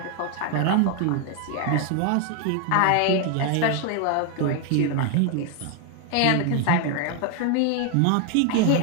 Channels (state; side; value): different; both; correlation 0.01